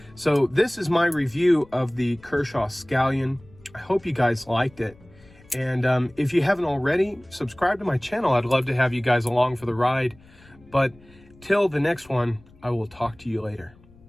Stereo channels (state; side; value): noise; left; rumble, 26 dB below the sound